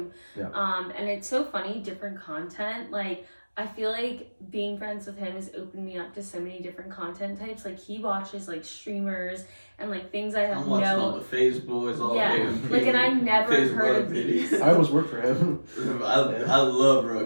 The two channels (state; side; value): inverted; both; correlation -1.00